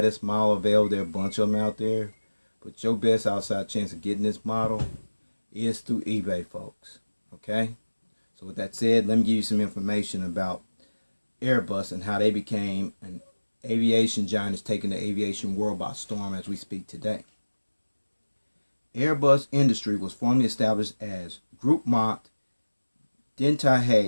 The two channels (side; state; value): both; inverted; correlation -1.00